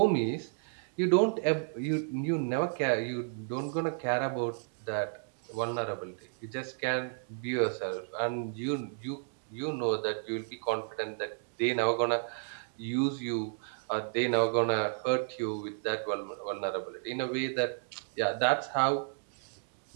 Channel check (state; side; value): silent; left; digital silence